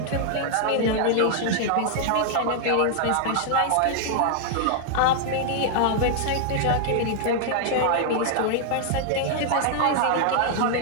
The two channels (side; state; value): both; different; correlation 0.00